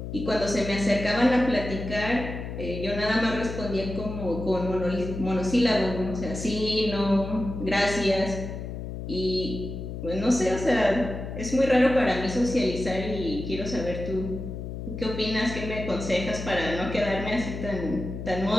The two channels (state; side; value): noise; left; hum, 7 dB below the sound